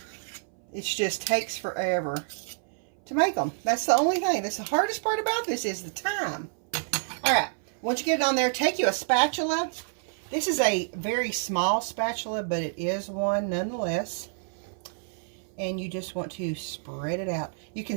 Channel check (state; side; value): silent; left; 58 dB below the other